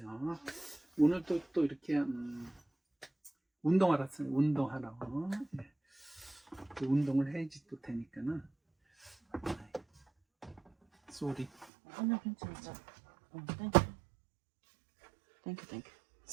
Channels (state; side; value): drops out; left; at 11.7 s